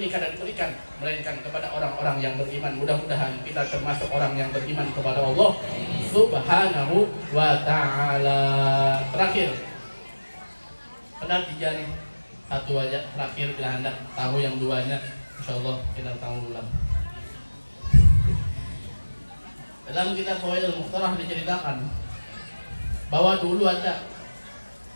kada diberikan melainkan kepada orang-orang yang beriman. Mudah-mudahan kita termasuk orang yang beriman kepada Allah Subhanahu wa ta'ala. Terakhir, pernah 3 nih, 1 aja terakhir bila Anda tahu yang 2-nya, insyaallah kita tahu ulang. Dalam kitab Fawaidul Mukhtarah diceritakan bahwa dulu ada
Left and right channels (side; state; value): both; inverted; correlation -1.00